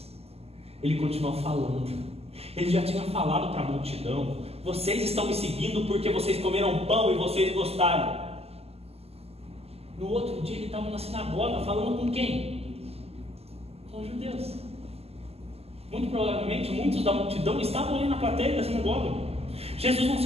Ele continua falando. Ele já tinha falado para a multidão: vocês estão me seguindo porque vocês comeram pão e vocês gostaram. No outro dia ele estava na sinagoga falando com quem? Com os judeus. Muito provavelmente muitos da multidão estavam ali na plateia da sinagoga. Jesus não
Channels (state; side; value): late; left; 0.29 ms